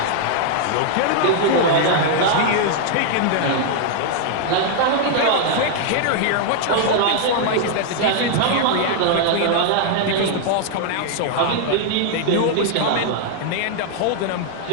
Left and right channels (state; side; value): different; both; correlation 0.00